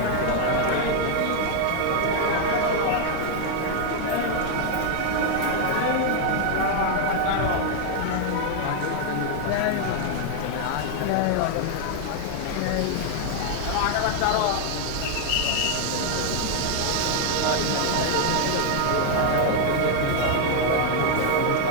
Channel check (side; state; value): both; different; correlation 0.00